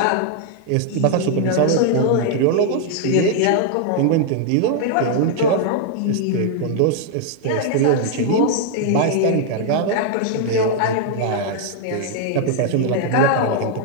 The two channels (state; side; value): different; both; correlation 0.00